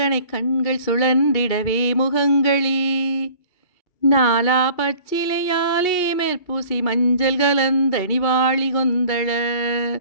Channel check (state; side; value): late; right; 2.8 ms